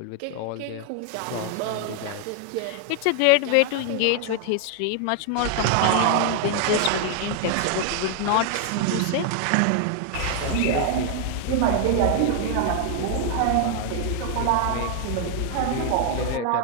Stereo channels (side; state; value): both; different; correlation 0.00